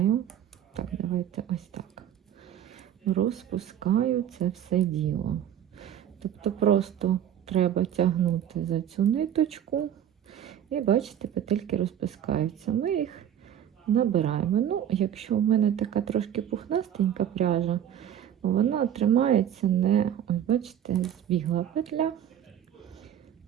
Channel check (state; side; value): quieter; left; 10.1 dB